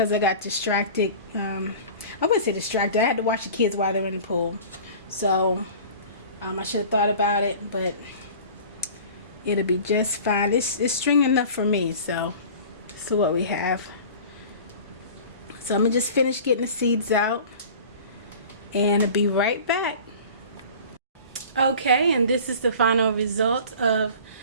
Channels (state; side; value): inverted; both; correlation -0.41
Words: I got distracted. I wouldn't say distracted. I had to watch the kids while they were in the pool. So I should have thought about it, but it'll be just fine. It's stringing enough for me, so this is what we have. So I'm gonna just finish getting the seeds out and I'll be right back. Okay, and this is the final result of